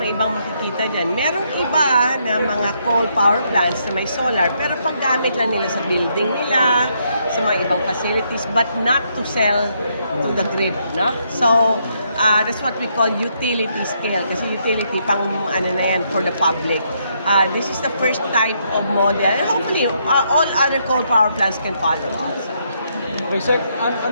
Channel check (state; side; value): inverted; both; correlation -0.75